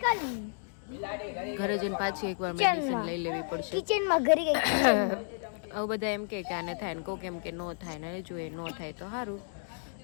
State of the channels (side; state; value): right; silent; digital silence